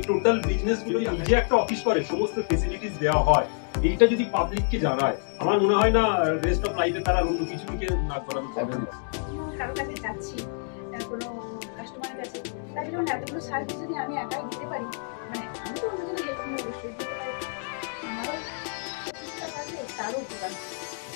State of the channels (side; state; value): right; silent; 57 dB below the other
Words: টোটাল বিজনেস গুলো নিজে একটা অফিস করে সমস্ত ফেসিলিটিস দেওয়া হয়, এইটা যদি পাবলিককে জানায়, আমার মনে হয় না রেস্ট অফ লাইফে তারা অন্য কিছু দিকে না করানো যাবে না। কারো কাছে যাচ্ছি, কোনো কাস্টমারের কাছে, তাই জন্য এতগুলো সার্ভিস যদি আমি একাই দিতে পারি, মানে আমি তো অন্যজনের হেল্প নিয়ে অবশ্যই দিতে পারি, আমারও চেষ্টা থাকলে তারও উপকার।